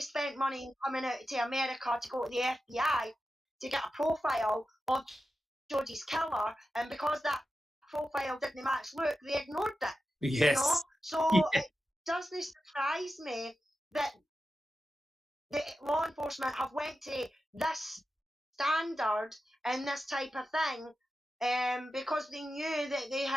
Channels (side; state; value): both; normal; correlation 0.91